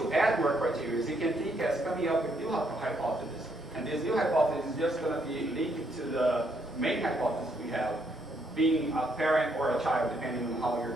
add more criteria, you can think as coming up with new hypothesis. And this new hypothesis is just going to be linked to the main hypothesis we have, being a parent or a child, depending on how you're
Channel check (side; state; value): both; normal; correlation 0.73